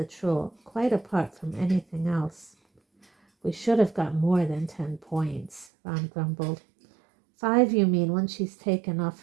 troll, quite apart from anything else. "We should have got more than 10 points, Ron grumbled. 5, you mean, when she's taken off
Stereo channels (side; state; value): left; drops out; at 5.7 s